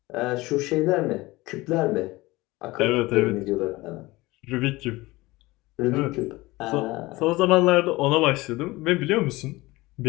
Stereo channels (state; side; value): quieter; right; 20.6 dB